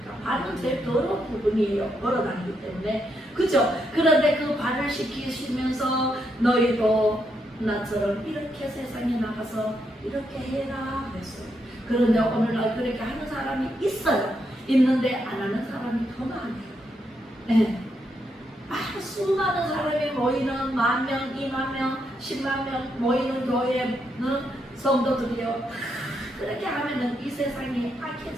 발은 제일 더러운 부분이에요. 걸어다니기 때문에. 그죠? 그런데 그 발을 시키시면서 너희도 나처럼 이렇게 세상에 나가서 이렇게 해라 그랬어요. 그런데 오늘날 그렇게 하는 사람이 있어요. 있는데 안 하는 사람이 더 많아요. 수많은 사람이 모이는 10,000명, 20,000명, 100,000명 모이는 교회는 성도들이요. 그렇게 하면은 이 세상이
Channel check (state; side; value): normal; both; correlation 0.79